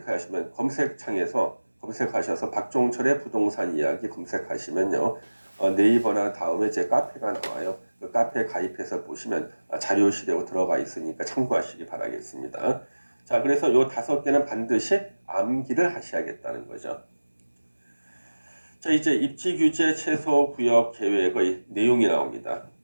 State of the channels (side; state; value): both; inverted; correlation -1.00